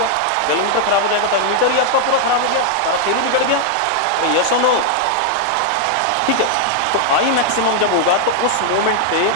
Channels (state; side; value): different; both; correlation 0.00